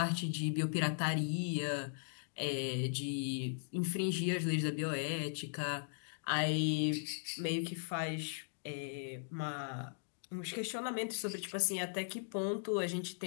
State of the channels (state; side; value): silent; right; digital silence